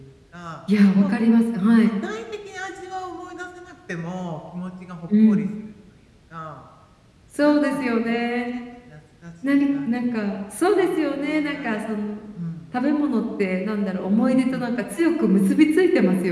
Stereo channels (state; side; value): identical; both; correlation 1.00